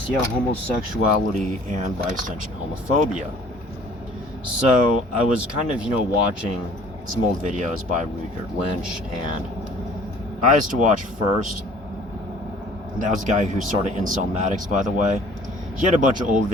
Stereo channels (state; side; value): normal; both; correlation 0.52